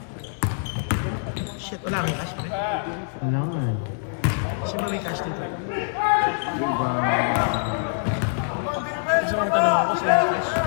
Shit, wala kang cash, right? Kailangan. Kasi may cash dito. Gusto mong tanong ako sa cash.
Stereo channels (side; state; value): right; silent; digital silence